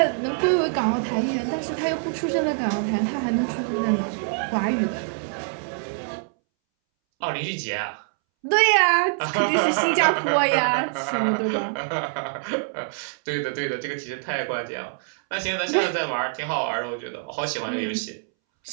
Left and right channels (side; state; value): left; silent; 62 dB below the other